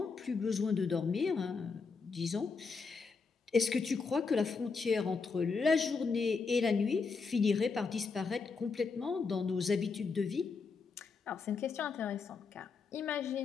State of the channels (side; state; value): right; quieter; 4.8 dB